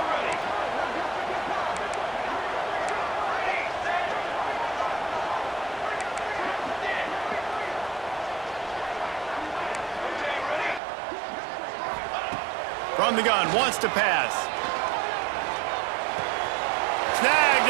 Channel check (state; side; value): drops out; left; at 10.8 s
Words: From the gun, wants to pass. Snagged